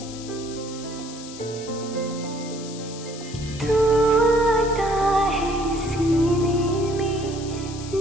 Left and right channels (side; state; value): left; noise; hiss, 14 dB below the sound